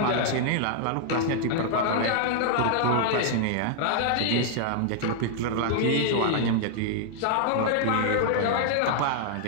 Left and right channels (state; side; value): different; both; correlation 0.00